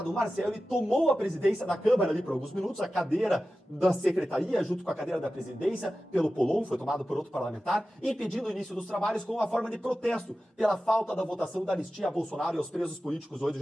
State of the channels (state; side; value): normal; both; correlation 0.94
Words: o Marcel ele tomou a presidência da Câmara ali por alguns minutos, a cadeira da secretaria, junto com a cadeira da presidência, pelo Polon, foi tomado por outro parlamentar, impedindo o início dos trabalhos com uma forma de protesto pela falta da votação da anistia a Bolsonaro e aos presos políticos 8 de